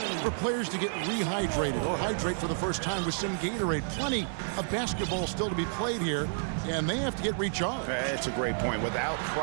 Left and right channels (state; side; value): silent; left; digital silence